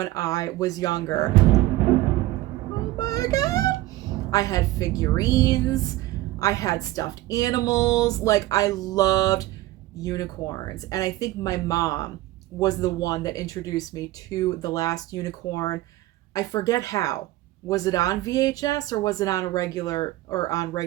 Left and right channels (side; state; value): left; quieter; 17.0 dB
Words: I was younger. Oh my God. I had figurines. I had stuffed animals. Like, I loved unicorns. And I think my mom was the one that introduced me to The Last Unicorn. I forget how. Was it on VHS or was it on regular